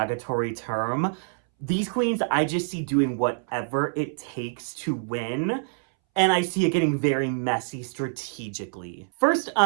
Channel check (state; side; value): silent; left; 61 dB below the other